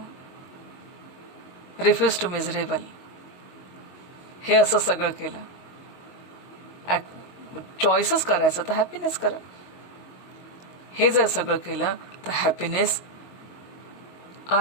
refuse to miserable, हे असं सगळं केलं, चॉईसच करायचं तर हॅपीनेस करा. हे जर सगळं केलं तर happiness,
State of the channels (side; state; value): right; late; 22 ms